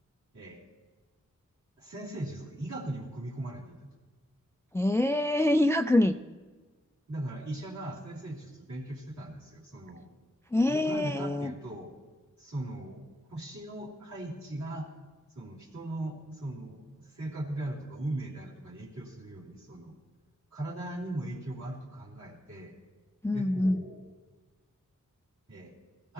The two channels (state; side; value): normal; both; correlation 0.85